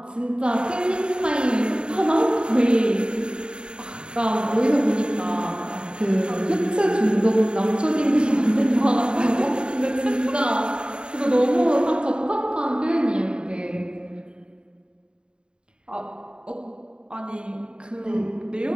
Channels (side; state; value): left; late; 0.051 ms